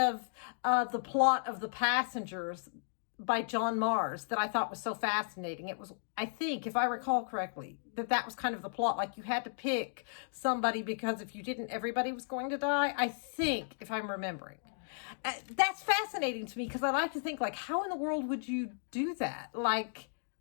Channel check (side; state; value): right; silent; digital silence